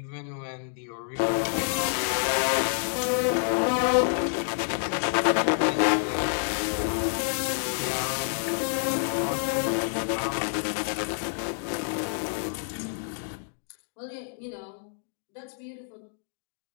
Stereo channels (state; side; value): silent; right; digital silence